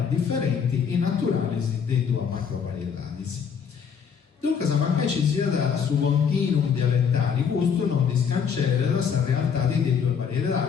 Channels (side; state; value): right; quieter; 6.9 dB